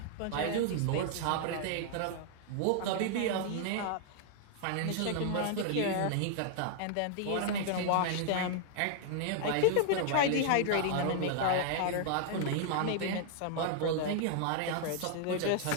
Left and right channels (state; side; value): different; both; correlation 0.00